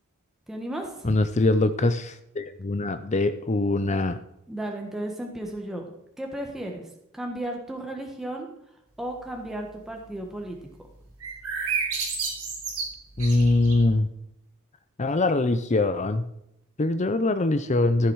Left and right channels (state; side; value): normal; both; correlation 0.65